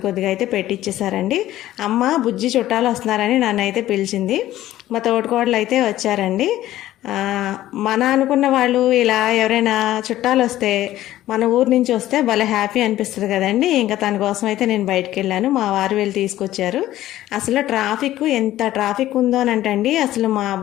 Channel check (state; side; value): quieter; right; 14.2 dB